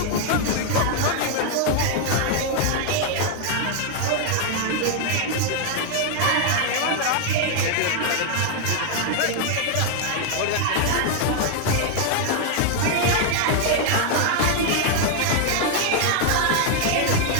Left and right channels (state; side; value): different; both; correlation 0.00